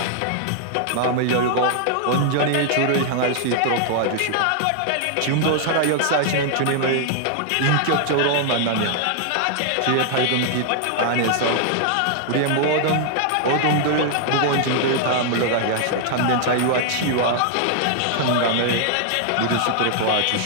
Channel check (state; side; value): different; both; correlation 0.00